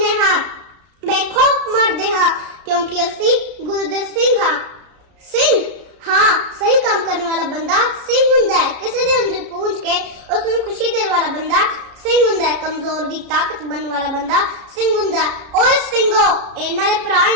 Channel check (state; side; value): late; left; 33 ms